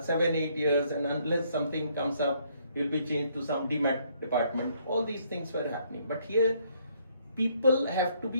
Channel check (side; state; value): both; inverted; correlation -0.68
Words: years, and unless something comes up, he will be changed to some demat department. All these things were happening, but here people have to